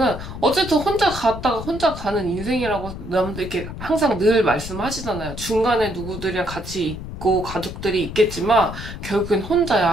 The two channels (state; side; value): noise; left; rumble, 10 dB below the sound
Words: 어쨌든 혼자 갔다가 혼자 가는 인생이라고 남들 이렇게 항상 늘 말씀하시잖아요. 중간에 누구들이랑 같이 있고 가족들이 있겠지만 결국엔